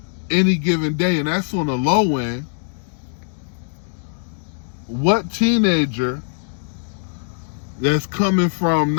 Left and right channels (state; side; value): silent; right; digital silence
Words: any given day, and that's on the low end, what teenager that's coming from